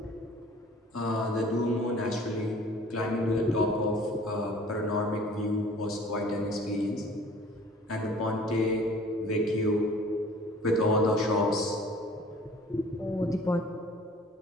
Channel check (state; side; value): normal; both; correlation 0.50